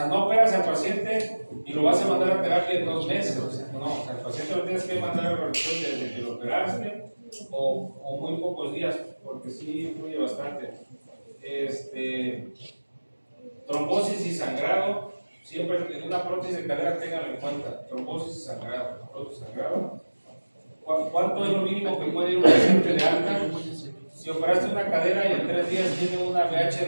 al paciente y lo vas a mandar a terapia en 2 meses. No, al paciente lo tienes que mandar a la rehabilitación desde que lo operaste o muy pocos días, porque sí influye bastante. Trombosis y sangrado, siempre en una prótesis de cadera tenganlo en cuenta. Trombosis y sangrado, ¿Cuánto es lo mínimo que puede ir un paciente de alta? Si operaste una cadera y en 3 días tiene una BH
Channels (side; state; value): both; inverted; correlation -1.00